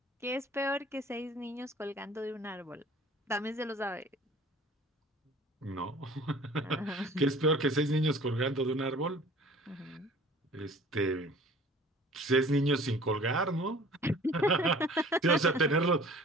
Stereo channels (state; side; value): normal; both; correlation 0.48